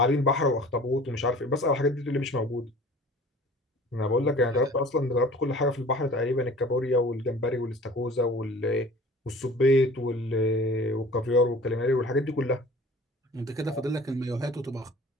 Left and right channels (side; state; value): both; normal; correlation 0.46